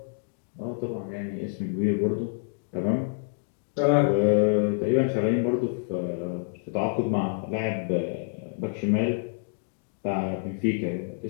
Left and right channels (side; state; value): right; silent; digital silence